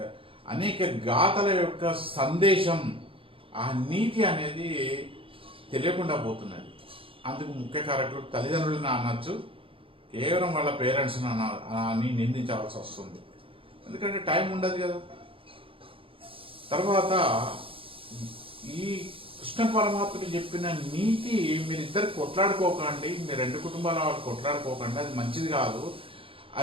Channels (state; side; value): late; left; 0.26 ms